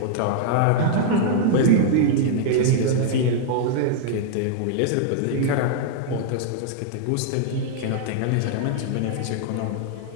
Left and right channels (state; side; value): different; both; correlation -0.01